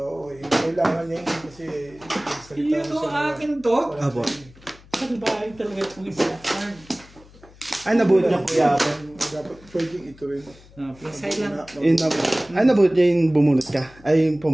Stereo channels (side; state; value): left; noise; hum, 24 dB below the sound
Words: kailangan niya yun kasi salita Yun o akin to. Abo. Saan bahay talaga itong isa? Ay, nabuhat niya kuya. Dapat pwedeng ito rin. Plasay lang. Ay, nabuhat niya yung bumunot ka. Ay, yung